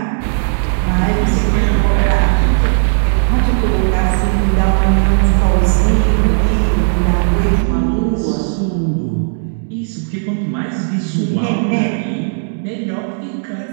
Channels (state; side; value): silent; left; digital silence